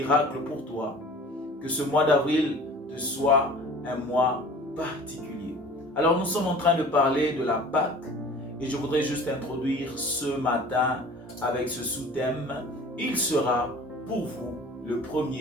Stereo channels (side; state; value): both; normal; correlation 0.44